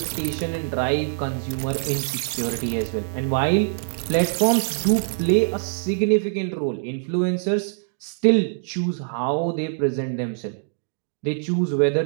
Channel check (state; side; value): silent; left; digital silence